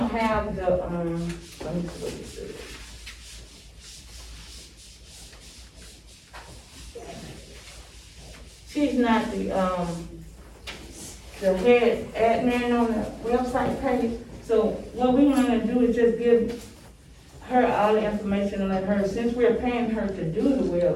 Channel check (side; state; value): both; identical; correlation 1.00